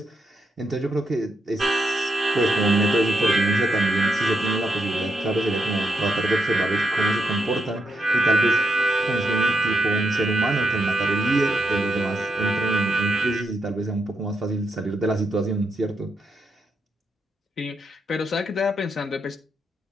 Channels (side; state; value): both; normal; correlation 0.80